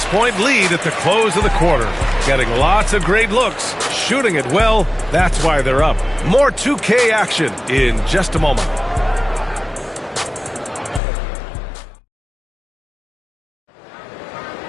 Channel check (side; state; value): right; drops out; at 11.0 s